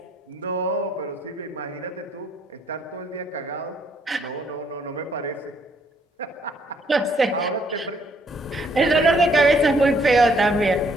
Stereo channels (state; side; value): normal; both; correlation 0.68